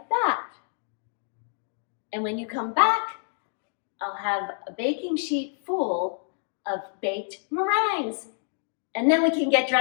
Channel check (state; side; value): silent; right; 60 dB below the other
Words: that. And when you come back, I'll have a baking sheet full of baked meringues. And then we can get